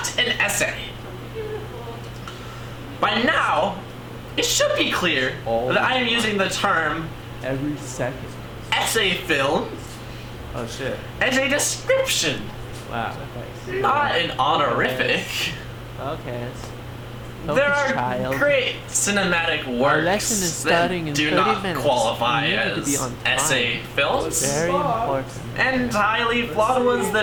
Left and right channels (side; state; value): both; identical; correlation 1.00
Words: an essay. By now, it should be clear that I am using the term Every second. essay film Oh shit. as a description, Wow. Okay. not an honorific. Okay. There are great cinematic lesson is works starting in that do 30 not minutes. qualify You need to be as on essay films, Very important. and highly flawed ones